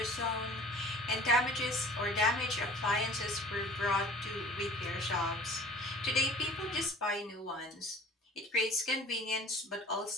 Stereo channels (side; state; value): both; normal; correlation 0.47